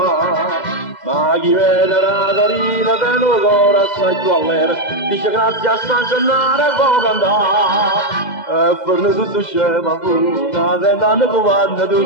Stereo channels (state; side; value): late; right; 2.0 ms